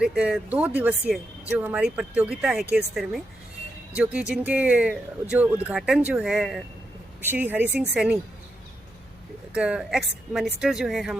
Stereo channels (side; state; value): left; noise; hum, 28 dB below the sound